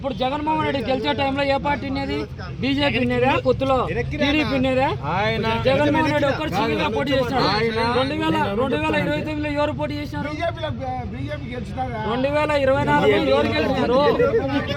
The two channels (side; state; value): both; identical; correlation 1.00